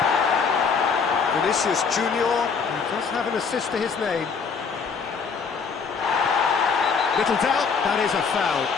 Vinicius Junior, he does have an assist to his name. Little doubt, that is a foul.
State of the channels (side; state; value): right; quieter; 5.6 dB